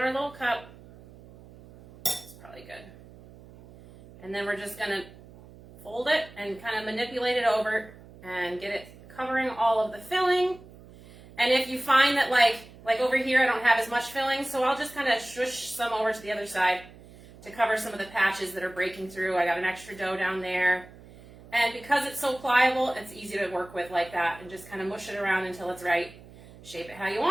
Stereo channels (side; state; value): right; noise; hum, 20 dB below the sound